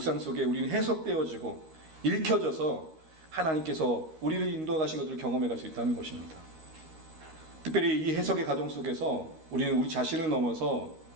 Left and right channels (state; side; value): late; left; 13 ms